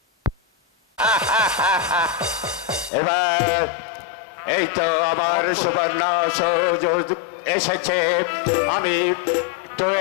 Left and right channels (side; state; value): right; drops out; at 2.9 s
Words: এবার এই তো আমার সুবর্ণ সুযোগ এসেছে। আমি তো